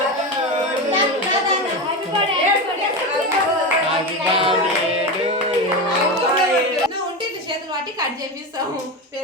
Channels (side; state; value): both; normal; correlation 0.19